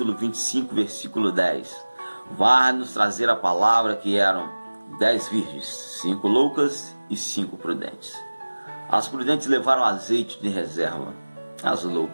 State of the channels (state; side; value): inverted; both; correlation -1.00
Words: 25, versículo 10. Vai nos trazer a palavra que eram 10 virgens, 5 loucas e 5 prudentes. As prudentes levaram azeite de reserva, as